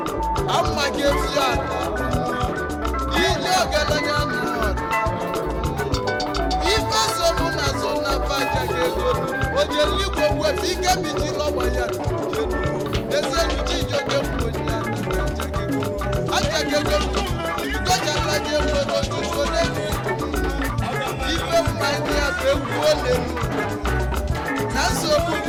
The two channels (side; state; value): both; identical; correlation 1.00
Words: ama ka efi ya ije ọgaranya na ife somu na so na achakego ojeligbo wefe ike biji lọgba ya eze nuji ijoge mmonye achakego gọjalaje nwere otuto n'elu ife mmanya ya bụ egwu olelu na nsogbu